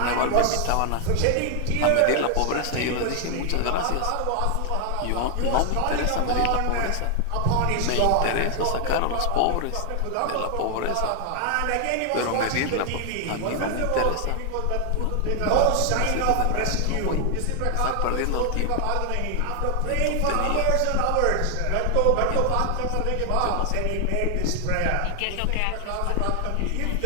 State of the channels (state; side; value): different; both; correlation 0.00